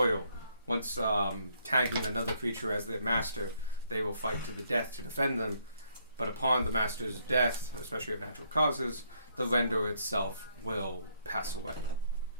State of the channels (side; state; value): both; inverted; correlation -0.71